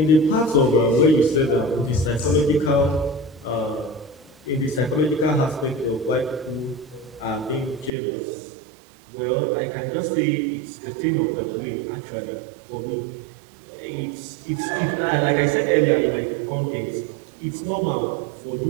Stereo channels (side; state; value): left; drops out; at 7.9 s